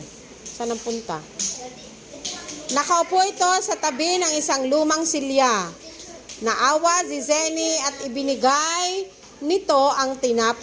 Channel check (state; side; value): identical; both; correlation 1.00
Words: Saan ang punta? Nakaupo ito sa tabi ng isang lumang silya. Naawa si Zenny at ibinigay nito ang